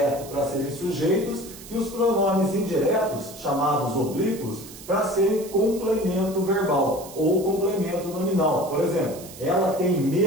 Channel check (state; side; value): noise; right; hiss, 16 dB below the sound